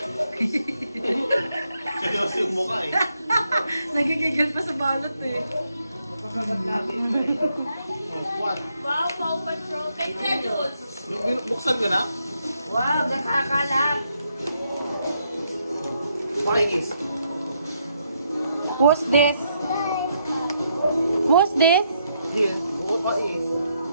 Seryoso yung mukha eh. Nagigigil pa sa balot eh. What? Wow, Paw Patrol. Kay Celos. Buksan ko na? Wow, nakakalat. What is? Who's this? Who's this? Here. What is?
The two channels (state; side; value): inverted; both; correlation -0.77